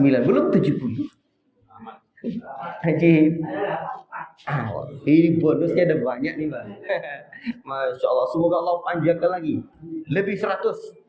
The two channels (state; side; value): identical; both; correlation 1.00